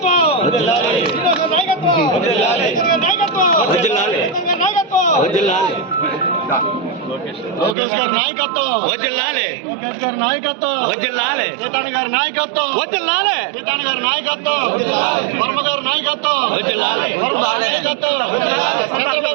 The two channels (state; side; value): drops out; left; at 7.8 s